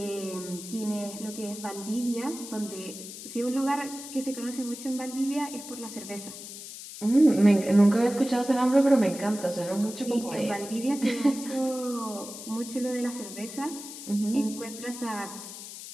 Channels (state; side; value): noise; left; hiss, 12 dB below the sound